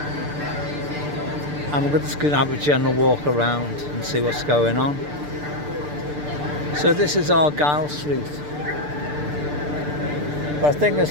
and we're just going to have a general walk around and see what's going on. So this is Argyle Street, but the thing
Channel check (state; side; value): late; left; 6.8 ms